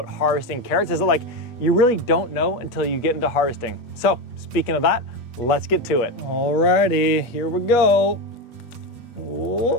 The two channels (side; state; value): right; late; 8.3 ms